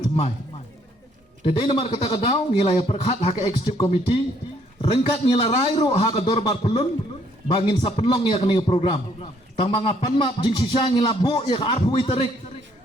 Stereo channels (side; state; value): both; normal; correlation 0.66